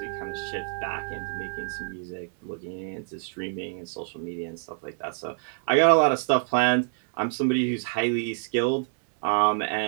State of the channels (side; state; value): left; silent; digital silence